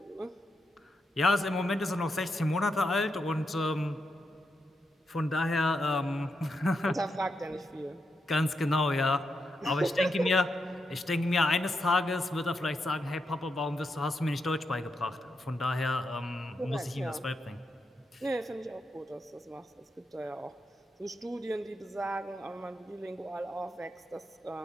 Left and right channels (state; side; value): normal; both; correlation 0.84